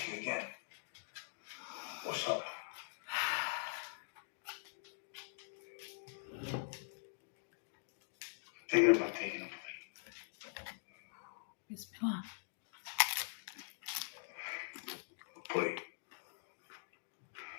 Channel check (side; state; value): right; silent; digital silence